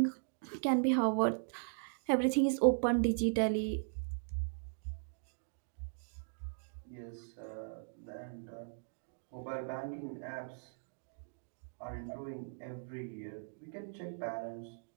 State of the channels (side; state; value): left; silent; digital silence